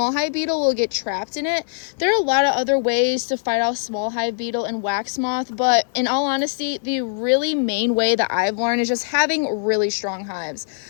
hive beetle will get trapped in it. There are a lot of other ways to fight off small hive beetle and wax moth, but in all honesty, the really main way that I've learned is just having really strong hives.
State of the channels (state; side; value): silent; right; digital silence